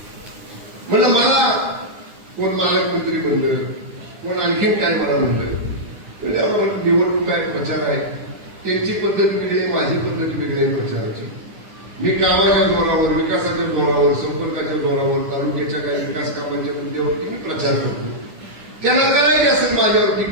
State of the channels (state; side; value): late; left; 9.9 ms